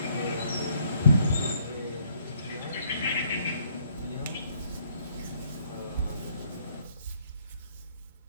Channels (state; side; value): inverted; both; correlation -0.66